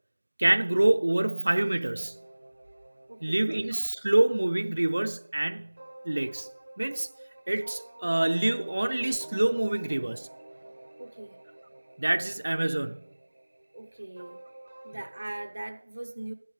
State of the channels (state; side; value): inverted; both; correlation -1.00